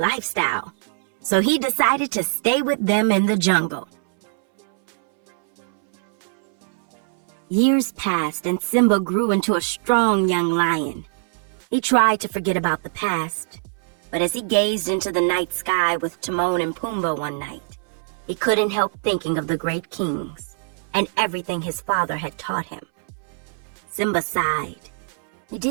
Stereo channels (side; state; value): left; silent; 62 dB below the other